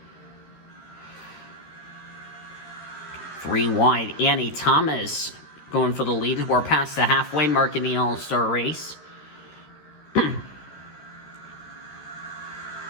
Three wide, Annie Thomas going for the lead. We're past the halfway mark in the All-Star race.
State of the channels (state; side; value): late; right; 13 ms